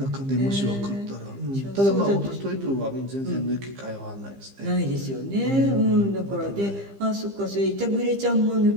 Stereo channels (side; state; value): left; late; 15 ms